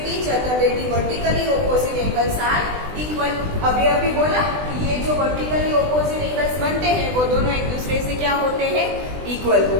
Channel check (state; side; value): late; left; 20 ms